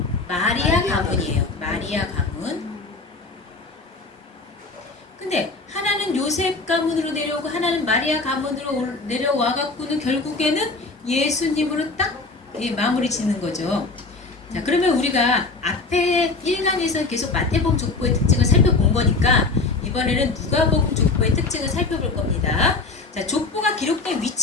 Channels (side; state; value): right; quieter; 3.7 dB